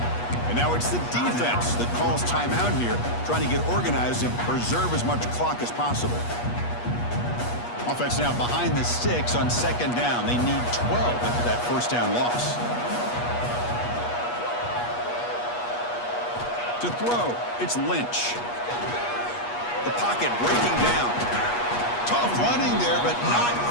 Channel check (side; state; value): right; late; 8.3 ms